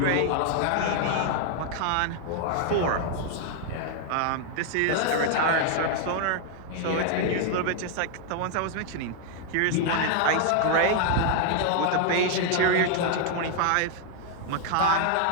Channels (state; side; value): different; both; correlation 0.00